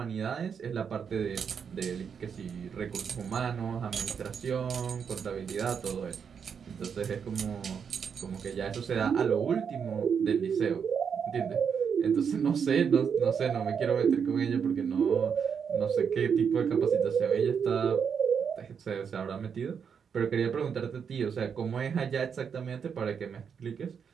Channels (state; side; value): quieter; left; 6.9 dB